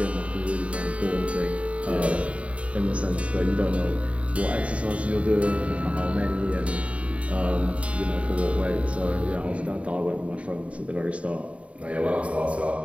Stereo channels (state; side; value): late; left; 0.064 ms